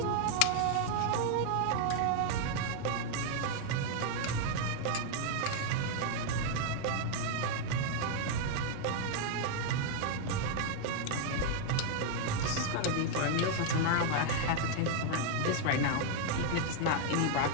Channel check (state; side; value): different; both; correlation 0.00